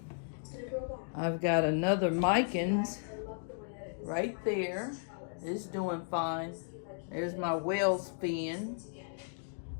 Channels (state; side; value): silent; right; digital silence